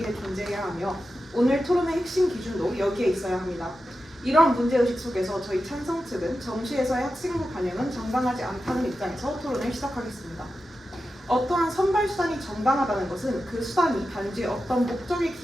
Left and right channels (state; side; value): normal; both; correlation 0.91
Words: 존재해야 하며 오늘 토론의 핵심 기준도 여기에 있어야 합니다. 이런 문제의식 속에서 저희 찬성 측은 정시에서의 학생부 반영은 정당하지 않다는 입장에서 토론을 시작하겠습니다. 어떠한 선발 수단이 정당하다는 것은 그 수단이 단지 어떤 목적에